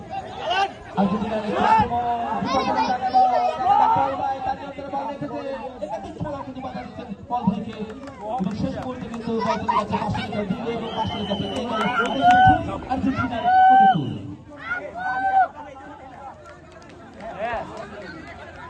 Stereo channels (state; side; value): identical; both; correlation 1.00